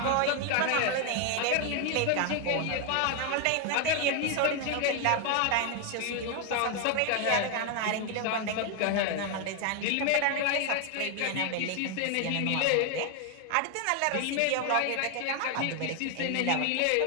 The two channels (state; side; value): different; both; correlation 0.01